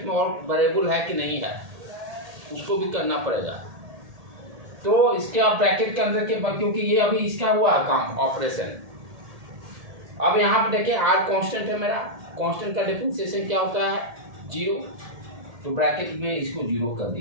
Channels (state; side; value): late; left; 1.8 ms